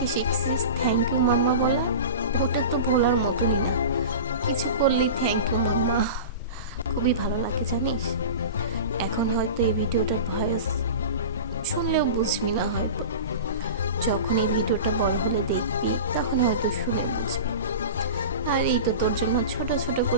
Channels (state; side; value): inverted; both; correlation -0.31